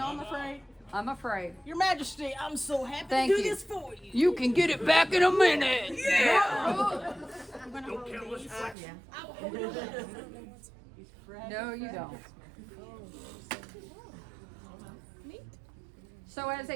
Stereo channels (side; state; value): left; drops out; at 8.8 s